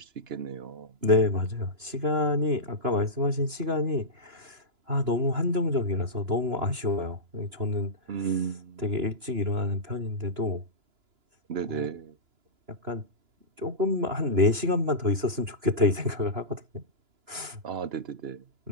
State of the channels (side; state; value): left; late; 2.9 ms